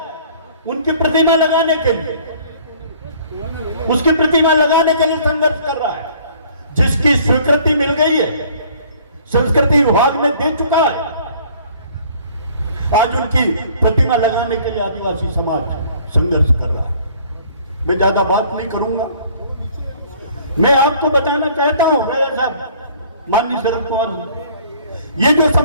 उनकी प्रतिमा लगाने के लिए, उसकी प्रतिमा लगाने के लिए संघर्ष कर रहा है, जिसकी स्वीकृति मिल गई है, संस्कृति विभाग ने दे चुका है। आज उनकी प्रतिमा लगाने के लिए आदिवासी समाज संघर्ष कर रहा है। मैं ज्यादा बात नहीं करूंगा, मैं आपको बताना चाहता हूं राजा साहब, माननीय शरद पवार जी, ये जो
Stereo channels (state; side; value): inverted; both; correlation -0.55